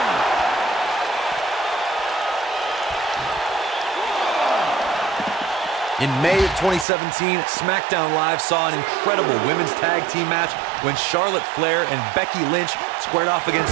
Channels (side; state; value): left; drops out; at 6.9 s